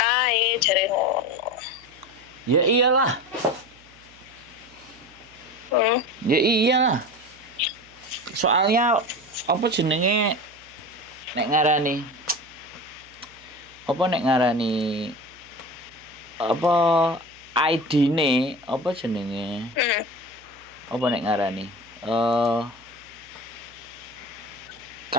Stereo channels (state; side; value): noise; right; hum, 28 dB below the sound